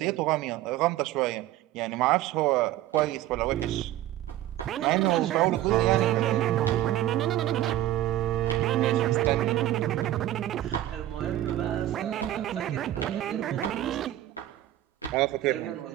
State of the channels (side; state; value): left; quieter; 13.8 dB